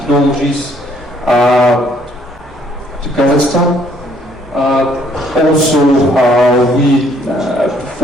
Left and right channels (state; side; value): normal; both; correlation 0.65